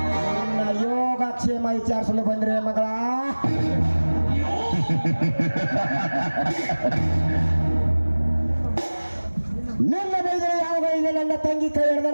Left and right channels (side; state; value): both; inverted; correlation -1.00